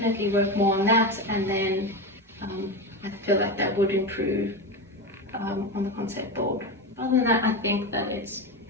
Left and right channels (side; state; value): both; normal; correlation 0.19